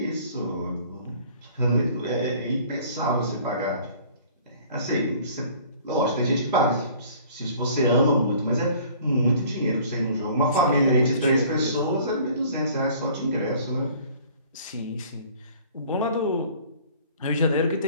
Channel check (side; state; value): both; inverted; correlation -0.51